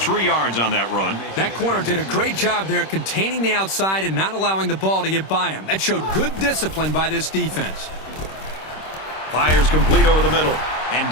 yards on that run. That corner did a great job there containing the outside and not allowing the ball to get by him. That showed good discipline by this defense. Fires complete over the middle. And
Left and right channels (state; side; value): late; right; 26 ms